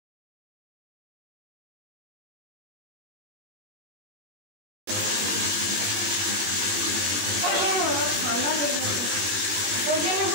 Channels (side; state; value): left; late; 20 ms